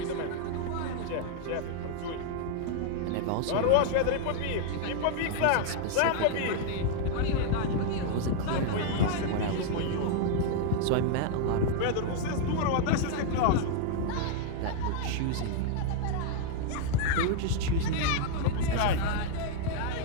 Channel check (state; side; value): different; both; correlation 0.00